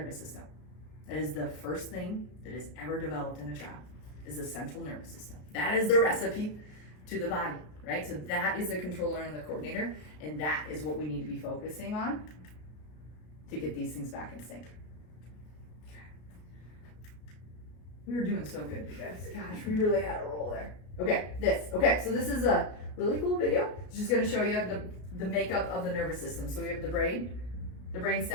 system. That is the first thing that is ever developed in a child, is the central nervous system. That is the recipe to the body, right? So that is the controller and the coordinator, and that is what we need to be focusing on to get these things back in sync. We were doing so good, you guys. Gosh, we really had a roll there. Okay, so this is a really cool video. It's just gonna show you the makeup of the nervous system. So we have the brain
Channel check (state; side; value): late; right; 33 ms